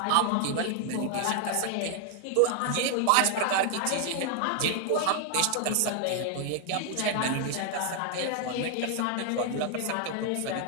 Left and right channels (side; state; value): both; different; correlation 0.00